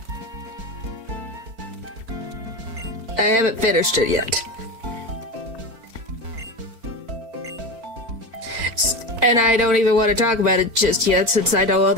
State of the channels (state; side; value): late; left; 4.4 ms